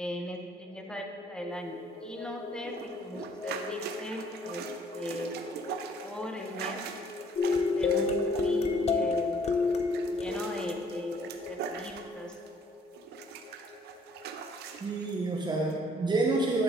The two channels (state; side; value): normal; both; correlation 0.60